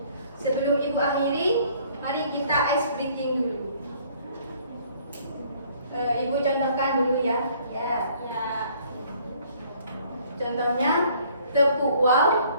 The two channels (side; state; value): both; inverted; correlation -0.59